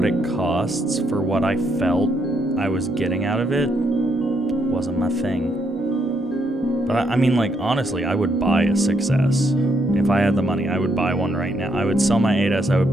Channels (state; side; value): normal; both; correlation 0.75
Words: it costs, for what I felt I was getting out of it, wasn't my thing. But I mean, like, honestly, I would buy a 6S. If I had the money, I would buy one right now. I would sell my 8S, I would